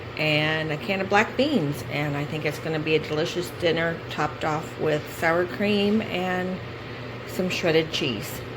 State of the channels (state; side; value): identical; both; correlation 1.00